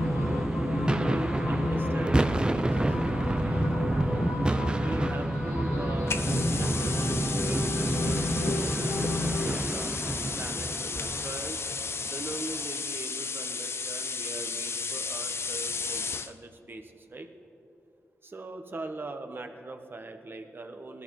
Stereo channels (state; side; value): normal; both; correlation 0.81